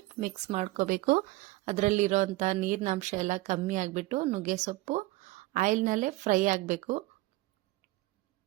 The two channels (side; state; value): left; quieter; 19.7 dB